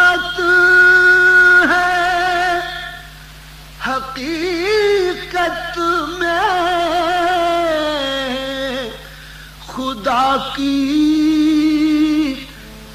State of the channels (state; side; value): identical; both; correlation 1.00